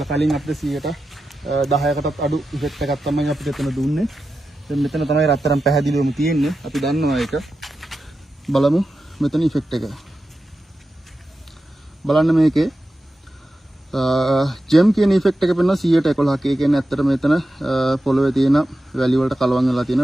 කලින් අපිට 10%කටත් අඩු ඉෆෙක්ට් එකක් තමයි අපිට එතන දුන්නේ. දැන් මෙතන තමයි රත්තරන් පැහැදිලිවම තියෙන්නේ. අපි දන්නවා ඒක. බලමු මෙතන ඉෆෙක්ට් එක. බලන්න මේකේ ජෙම් කියන ඉෆෙක්ට් එක පෙන්වන 111ක්. ඒ කියන්නේ ඇත්තට මෙතන පොළවේ තියෙන වැලි වලට කලවම් වෙලා තියෙන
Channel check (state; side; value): normal; both; correlation 0.91